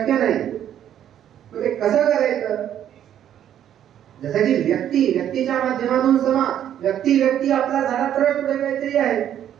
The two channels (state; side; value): quieter; left; 10.4 dB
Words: नाही. मग ते कसं करायचं? जसं की व्यक्तीच्या माध्यमातून समाज, व्यक्ती आपला झाला तर पुढे काहीतरी आहे.